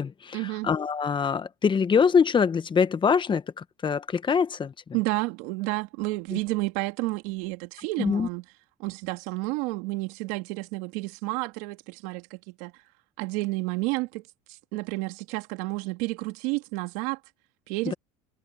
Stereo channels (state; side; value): normal; both; correlation 0.43